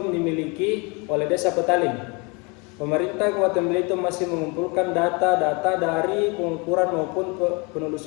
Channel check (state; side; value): quieter; right; 30.0 dB